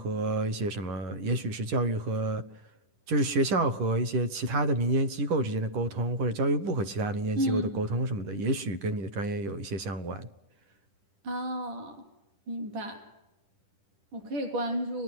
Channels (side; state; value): left; late; 10 ms